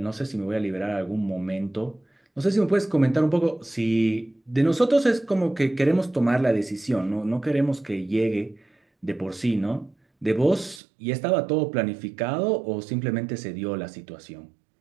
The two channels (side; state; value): left; drops out; at 10.8 s